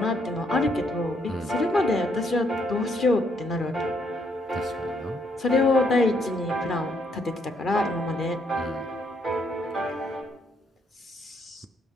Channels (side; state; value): both; normal; correlation 0.71